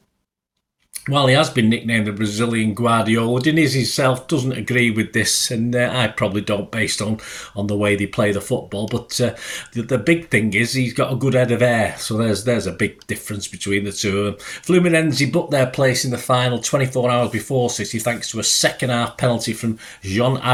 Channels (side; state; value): both; identical; correlation 1.00